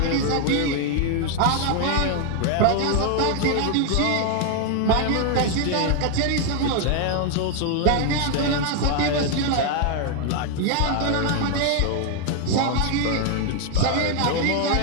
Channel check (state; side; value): different; both; correlation 0.00